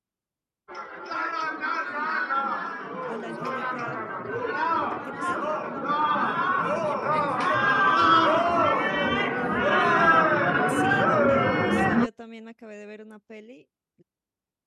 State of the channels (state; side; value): identical; both; correlation 1.00